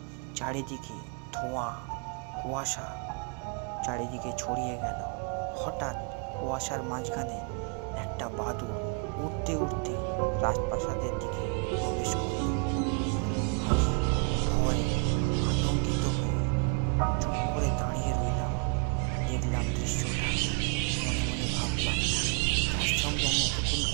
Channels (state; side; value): quieter; left; 33.6 dB